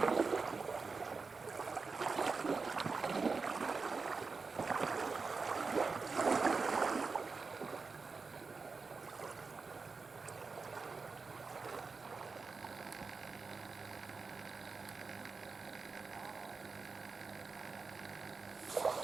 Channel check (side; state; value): left; quieter; 4.5 dB